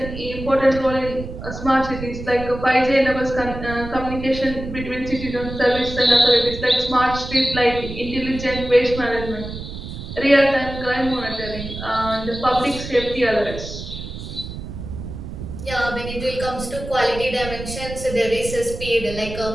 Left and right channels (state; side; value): noise; right; rumble, 9 dB below the sound